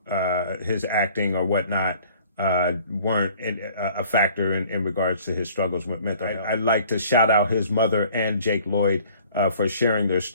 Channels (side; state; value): both; inverted; correlation -0.53